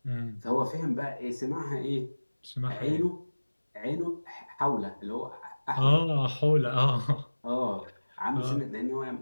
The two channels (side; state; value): both; inverted; correlation -1.00